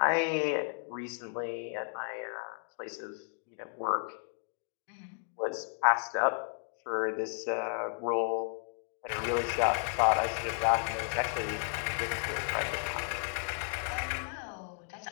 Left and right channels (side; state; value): right; silent; 56 dB below the other